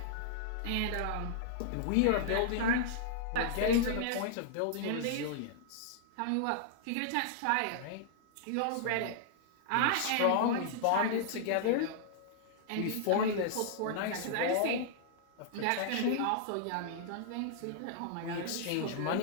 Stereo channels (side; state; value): both; different; correlation -0.01